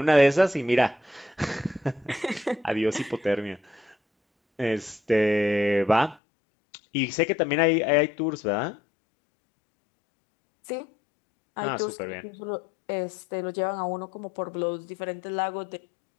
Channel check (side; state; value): right; drops out; at 6.2 s